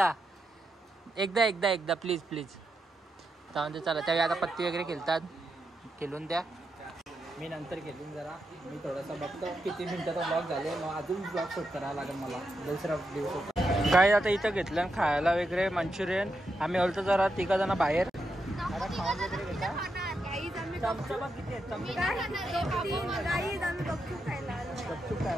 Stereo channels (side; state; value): both; normal; correlation 0.85